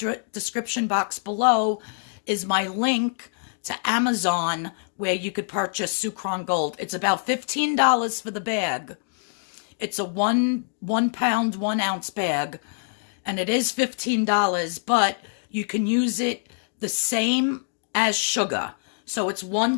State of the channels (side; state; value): right; silent; digital silence